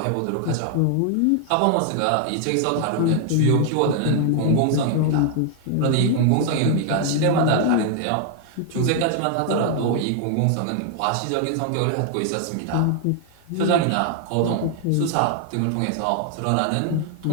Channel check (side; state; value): both; different; correlation 0.00